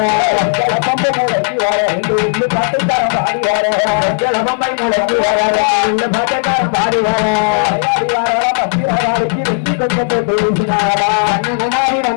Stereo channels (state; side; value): silent; right; digital silence